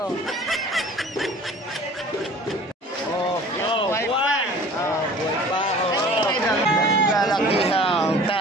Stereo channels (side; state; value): both; normal; correlation 0.46